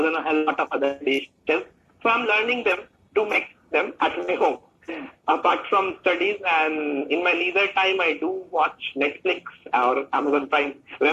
and a hell lot of other dishes. So I'm learning them to make them at my home. Apart from studies and in my leisure time, I do watch Netflix or Amazon Prime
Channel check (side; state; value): both; identical; correlation 1.00